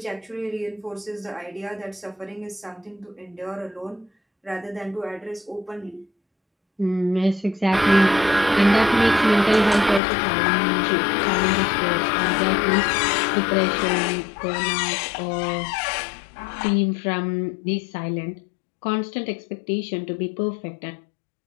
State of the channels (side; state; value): right; drops out; at 10.0 s